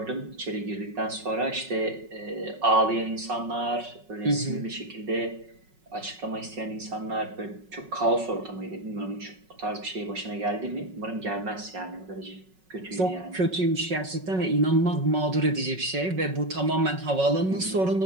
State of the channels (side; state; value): left; late; 5.4 ms